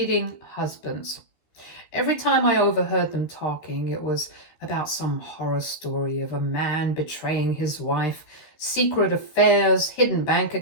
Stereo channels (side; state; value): right; late; 13 ms